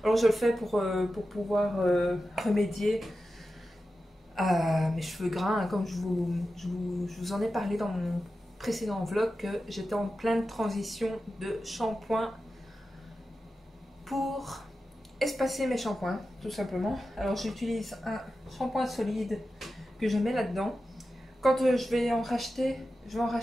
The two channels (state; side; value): normal; both; correlation 0.92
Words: Alors je le fais pour pouvoir remédier à mes cheveux gras, hein, comme je vous en ai parlé dans mon précédent vlog, que j'étais en pleine transition de shampoing pour espacer mes shampoings, tout simplement. Alors j'utilise un shampoing solide que je mets là-dedans. Quand je vais en racheter